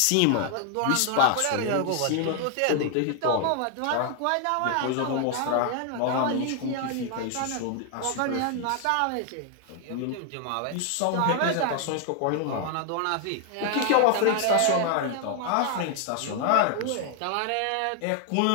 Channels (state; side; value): different; both; correlation 0.00